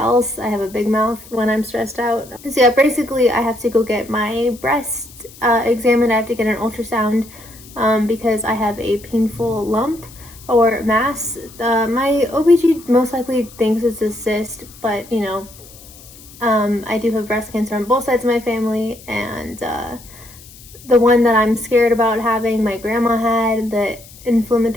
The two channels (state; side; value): noise; left; hiss, 21 dB below the sound